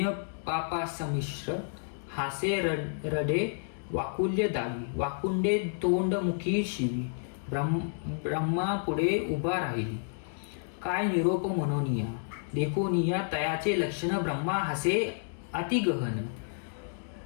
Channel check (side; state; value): right; silent; digital silence